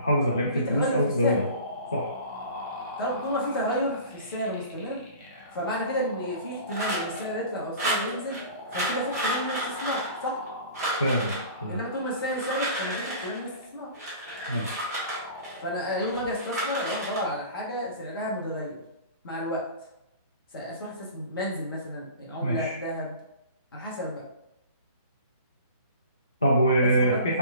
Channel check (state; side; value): inverted; both; correlation -0.41